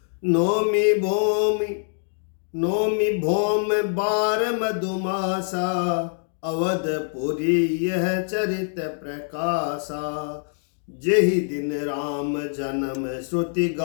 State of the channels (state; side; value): silent; right; digital silence